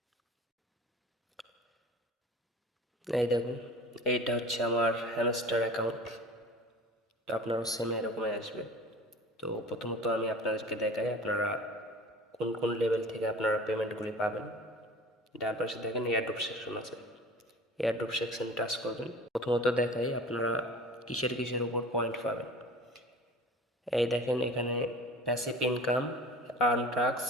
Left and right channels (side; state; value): both; normal; correlation 0.41